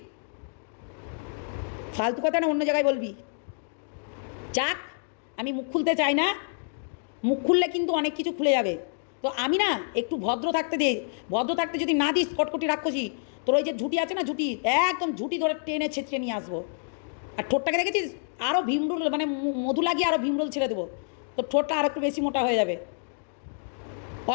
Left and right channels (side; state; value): right; silent; digital silence